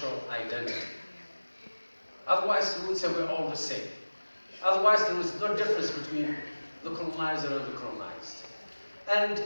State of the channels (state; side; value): inverted; both; correlation -1.00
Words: identity. Otherwise, we would say we're all the same. Otherwise, there is no difference between the colonizer and the colonized. And